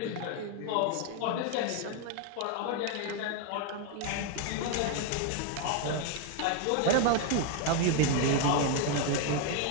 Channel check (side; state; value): both; different; correlation 0.01